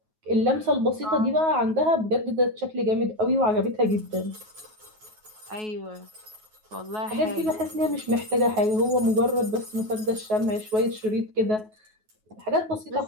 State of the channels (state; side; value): late; left; 9.3 ms